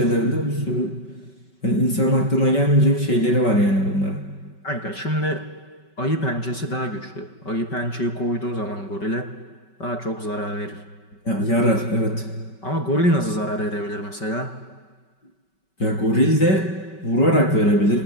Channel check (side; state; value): right; late; 5.3 ms